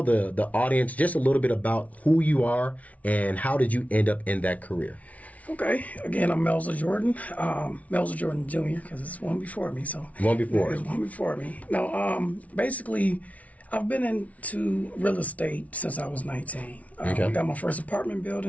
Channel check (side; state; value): right; late; 0.068 ms